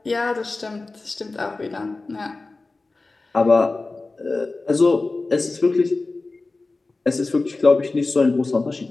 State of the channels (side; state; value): right; quieter; 3.5 dB